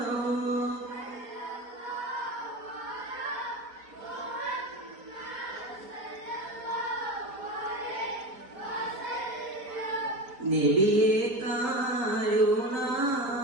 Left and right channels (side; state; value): left; late; 4.3 ms